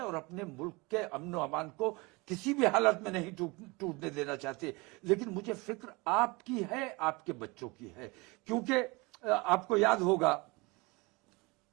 और अपने मुल्क के अमन व अमान को किसी भी हालत में नहीं टूटने देना चाहते। लेकिन मुझे फिक्र आपकी है, आपके बच्चों की है, क्योंकि आपको याद होगा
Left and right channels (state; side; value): quieter; left; 25.6 dB